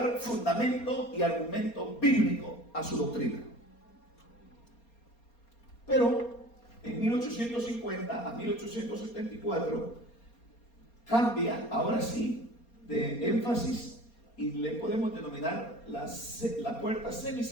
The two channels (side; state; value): right; late; 4.3 ms